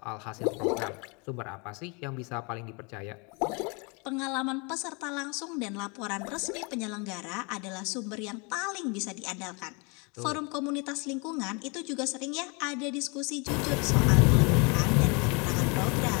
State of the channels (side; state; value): right; quieter; 31.1 dB